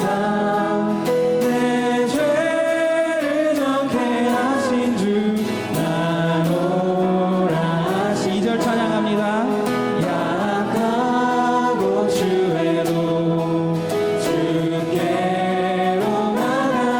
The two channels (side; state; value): both; identical; correlation 1.00